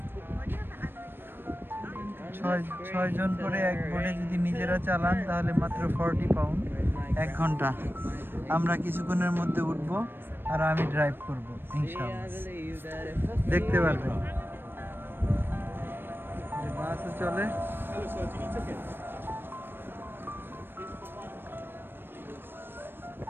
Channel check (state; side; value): late; left; 0.099 ms